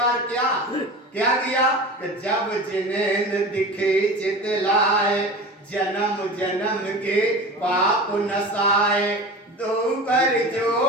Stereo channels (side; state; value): both; normal; correlation 0.33